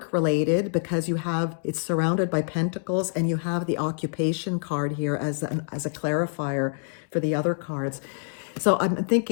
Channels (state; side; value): silent; right; digital silence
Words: related because it's surrounded by pentacles, and you have the occupation card here as a clarifier for the other cards. So I'm